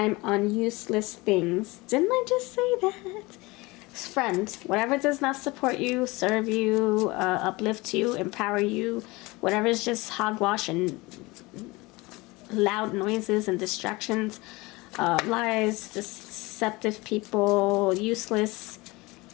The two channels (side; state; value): right; quieter; 23.0 dB